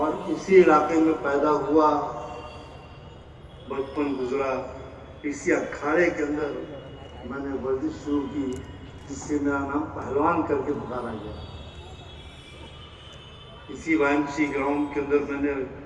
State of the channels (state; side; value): identical; both; correlation 1.00